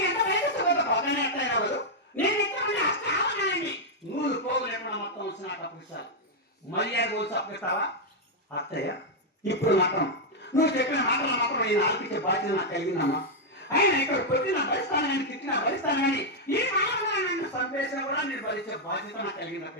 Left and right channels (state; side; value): normal; both; correlation -0.01